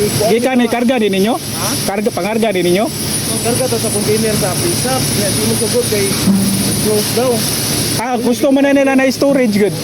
Gikan ni karga din ninyo? Karga pangarga din ninyo? Karga to sa container sa pisap. Yan di mo sugod kay close daw. Gusto man na nila na storage good.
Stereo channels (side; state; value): both; identical; correlation 1.00